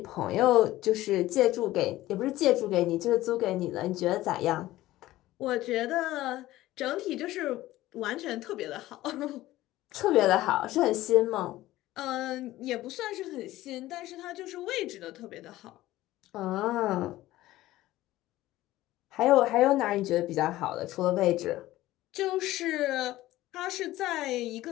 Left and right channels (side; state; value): right; quieter; 16.2 dB